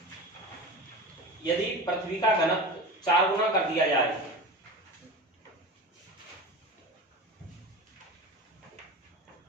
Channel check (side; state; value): both; normal; correlation 0.30